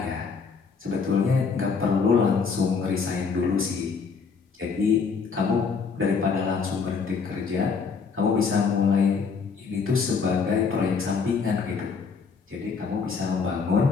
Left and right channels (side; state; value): right; quieter; 5.4 dB